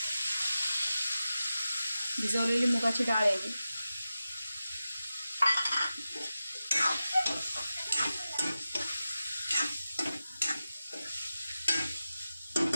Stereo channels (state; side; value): inverted; both; correlation -0.94